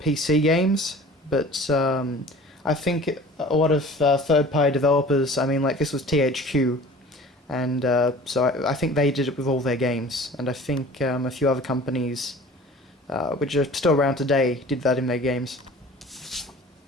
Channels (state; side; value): normal; both; correlation 0.44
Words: games, but I think a lot of third-party developers, this was THQ, and so I think they did it with all their games, and I think a few other companies, which are still around today, did that in their games.